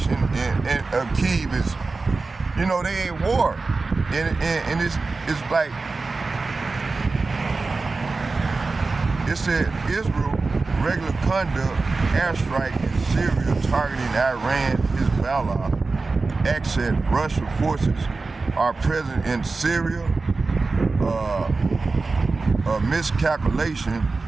in Kyiv is, you know, they ain't war, and it's like, it said Israel regular conduct airstrike in Syria targeting Iran, Hezbollah, access Russian forces are present in Syria, a miscalculation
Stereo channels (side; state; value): left; quieter; 3.8 dB